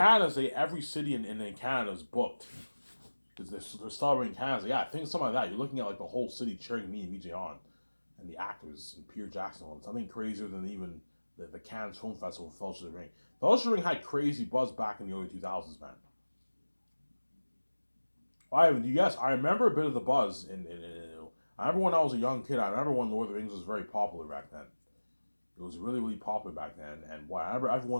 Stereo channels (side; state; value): both; inverted; correlation -1.00